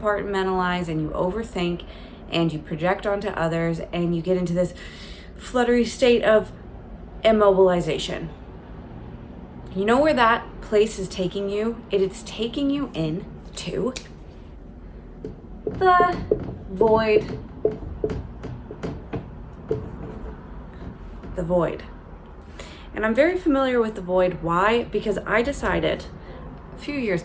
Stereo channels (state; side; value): identical; both; correlation 1.00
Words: and you overthink and you project onto others and you get into this fluttery state of immobilization. You know where that place is taking you? It is taking you into the void. The void. And I'm very familiar with the void. Why? Because I decided a few years